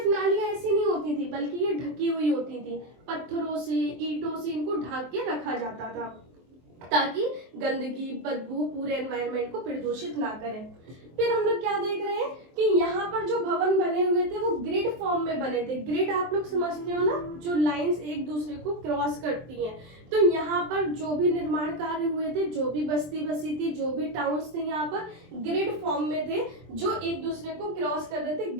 नालियां ऐसी नहीं होती थी, बल्कि ये ढकी हुई होती थी, पत्थरों से, ईंटों से इनको ढक के रखा जाता था, ताकि गंदगी, बदबू पूरे एनवायरनमेंट को प्रदूषित ना करें। फिर हम लोग क्या देख रहे हैं कि यहाँ पर जो भवन बने हुए थे वो ग्रिड फॉर्म में बने थे। ग्रिड आप लोग समझते हो ना, जो लाइंस एक दूसरे को क्रॉस करती हैं। तो यहाँ पर जो भी निर्माण कार्य हुए थे, जो भी बस्ती बसी थी, जो भी टाउन्स थे, यहाँ पर ग्रिड फॉर्म में थे, जो एक दूसरे को क्रॉस कर रहे थे,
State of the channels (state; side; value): late; left; 23 ms